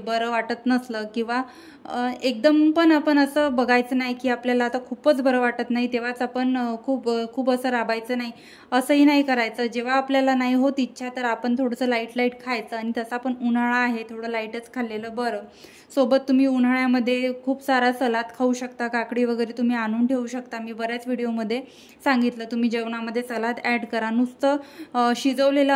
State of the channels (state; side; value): identical; both; correlation 1.00